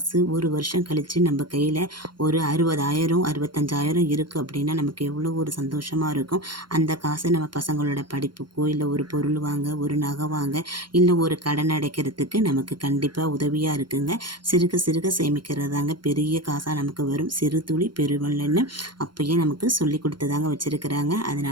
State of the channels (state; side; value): late; left; 0.72 ms